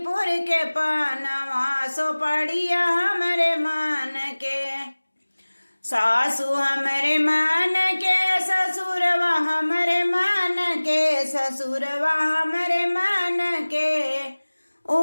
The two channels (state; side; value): inverted; both; correlation -1.00